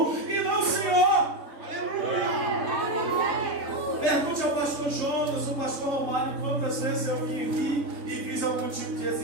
e não senhor. Pergunte ao pastor Jonas, o pastor Romário, quantas vezes eu vim aqui e fiz algum tipo de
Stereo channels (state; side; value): late; left; 3.6 ms